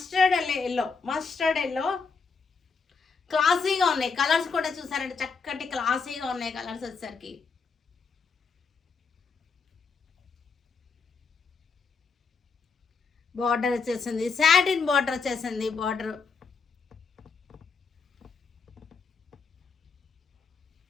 ఎల్లో. మస్టర్డ్ ఎల్లో క్లాసీగా ఉన్నాయి. కలర్స్ కూడా చూసారంటే చక్కటి క్లాసీగా ఉన్నాయి కలర్స్ వచ్చేసరికి. బార్డర్ వచ్చేసింది, సాటిన్ బార్డర్ వచ్చేసింది. బార్డర్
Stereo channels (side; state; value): right; quieter; 5.0 dB